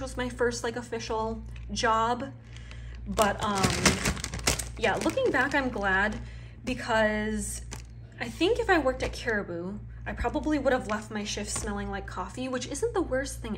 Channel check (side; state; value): both; identical; correlation 1.00